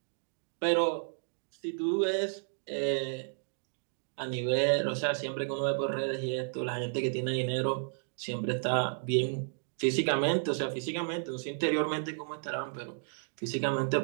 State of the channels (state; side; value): silent; left; digital silence